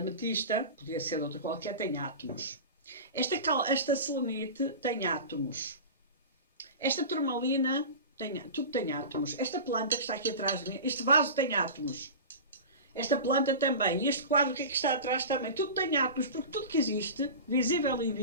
podia ser de outra qualquer, tem átomos. Esta selenite tem átomos. Esta turmalina tudo tem átomos. Esta planta que está aqui atrás de mim, este vaso tem átomos. Esta planta também. E este quadro que está atrás também. Tudo tem átomos, porque tudo que existe, visível e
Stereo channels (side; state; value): both; inverted; correlation -0.31